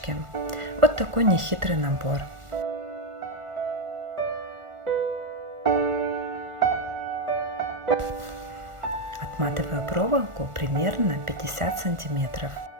Вот такой нехитрый набор. Отматываю проволоку примерно 50 сантиметров.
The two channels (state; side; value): late; left; 1.4 ms